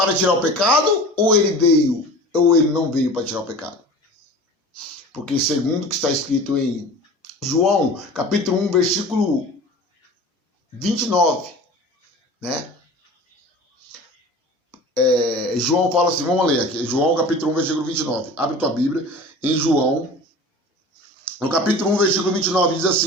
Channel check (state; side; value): normal; both; correlation 0.38